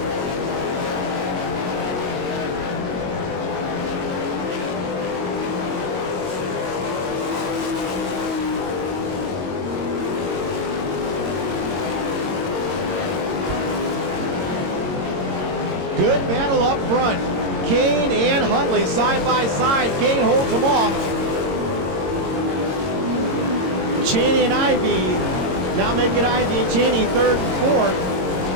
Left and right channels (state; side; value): late; left; 22 ms